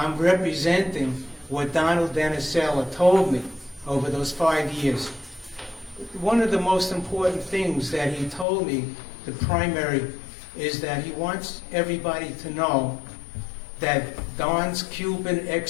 representing what Donald Deneselya told me over those 5 years. One of the most important things that he told me, the primary, is that he wants everybody to know that Don's Cuban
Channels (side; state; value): right; drops out; at 8.5 s